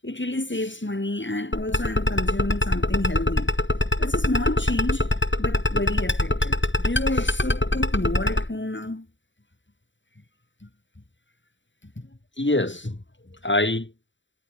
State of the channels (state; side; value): late; right; 0.54 ms